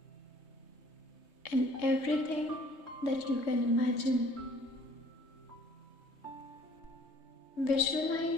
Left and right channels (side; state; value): right; late; 3.3 ms